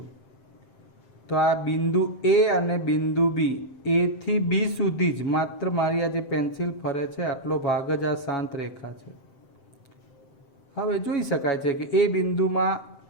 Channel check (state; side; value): late; right; 7.7 ms